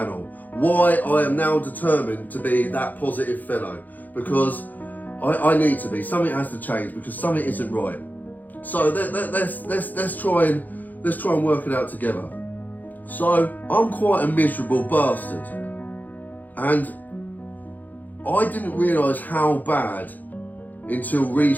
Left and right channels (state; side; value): late; right; 0.083 ms